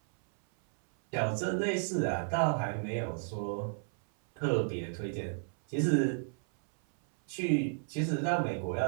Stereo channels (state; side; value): silent; left; 56 dB below the other